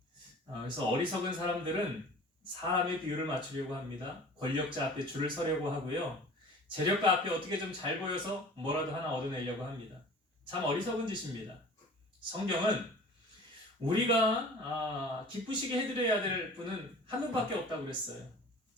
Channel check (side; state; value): both; normal; correlation 0.43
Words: 그래서 어리석은 사람들은 사람의 비율을 맞추려고 합니다. 권력자 앞에 줄을 서려고 하고요. 재력가 앞에 어떻게 좀 잘 보여서 뭐라도 하나 얻어내려고 합니다. 참 어리석은 짓입니다. 성경은 우리가 기쁘시게 해드려야 될 분은 한 분밖에 없다고 그랬어요.